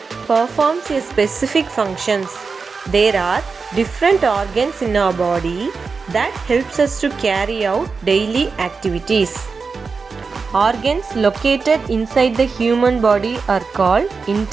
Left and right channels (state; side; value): quieter; left; 4.8 dB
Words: performs a specific functions. There are different organs in our body that helps us to carry out daily activities. Organs located inside the human body are called